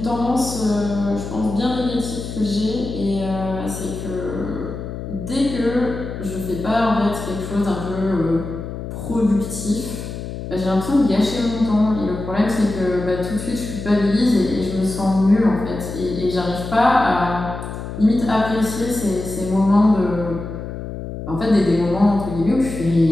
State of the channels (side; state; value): left; noise; hum, 8 dB below the sound